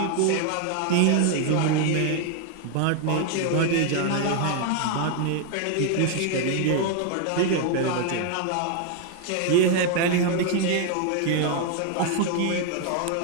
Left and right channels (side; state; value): both; different; correlation 0.00